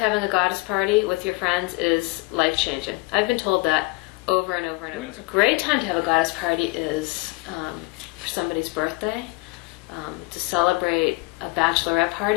a goddess party with your friends is life-changing. I've been told that over and over and over. A great time to have a goddess party is for somebody's birthday, to celebrate a bachelorette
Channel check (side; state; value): right; quieter; 24.8 dB